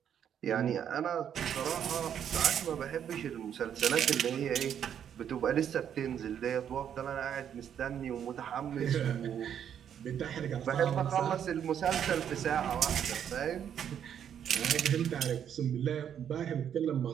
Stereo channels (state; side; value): quieter; left; 9.0 dB